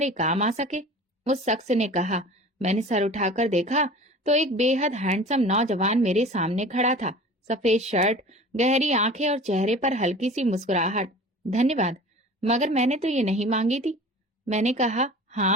काम आ सके, उस शख्स ने कहा। मैंने सर उठाकर देखा तो एक बेहद हैंडसम नौजवान मेरे सामने खड़ा था। सफेद शर्ट, गहरी आंखें और चेहरे पर हल्की सी मुस्कुराहट। धन्यवाद, मगर मैंने तो ये नहीं मांगी थी। मैंने कहा,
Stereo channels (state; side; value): normal; both; correlation 0.40